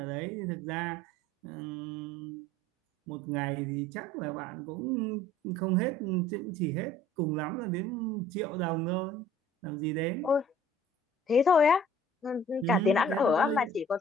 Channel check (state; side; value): normal; both; correlation 0.52